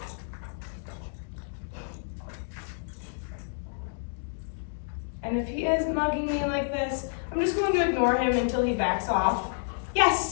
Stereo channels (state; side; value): silent; right; digital silence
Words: And if he is mugging me like this, I'm just going to ignore him until he backs off.